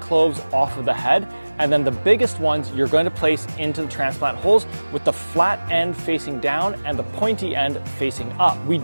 off of the head, and then the biggest ones you're going to place into the transplant holes with the flat end facing down and the pointy end facing up. We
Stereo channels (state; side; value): inverted; both; correlation -1.00